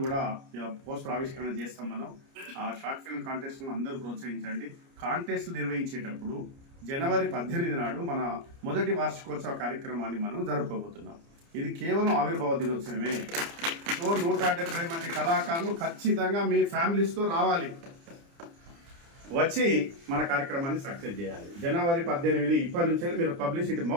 కూడా పోస్టర్ ఆవిష్కరణ చేస్తాం. మనం ఆ షార్ట్ ఫిల్మ్ కాంటెస్ట్ను అందరూ ప్రోత్సహించండి. కాంటెస్ట్లు నిర్వహించేటప్పుడు జనవరి 18 నాడు మన మొదటి వార్షికోత్సవ కార్యక్రమాన్ని మనం జరుపుకోబోతున్నాం. ఇది కేవలం ఆవిర్భావ దినోత్సవమే. సో 170 మంది కళాకారులు ఖచ్చితంగా మీ ఫ్యామిలీస్తో రావాలి, వచ్చి మన కార్యక్రమాన్ని సక్సెస్ చేయాలి. జనవరి 18 ఇప్పటి నుంచి మీరు పబ్లిసిటీ,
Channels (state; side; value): late; left; 29 ms